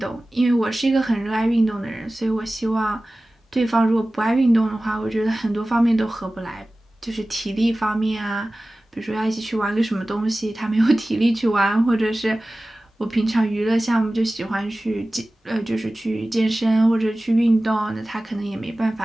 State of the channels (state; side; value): normal; both; correlation 0.97